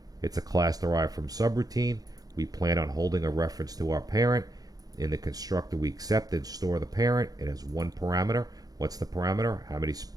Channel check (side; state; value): left; late; 0.18 ms